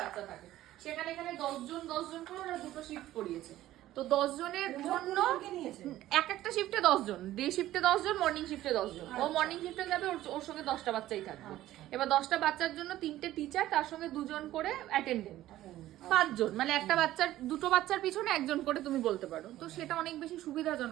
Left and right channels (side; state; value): left; quieter; 14.5 dB